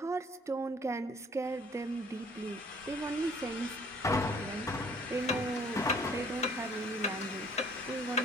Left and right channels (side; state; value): both; normal; correlation 0.57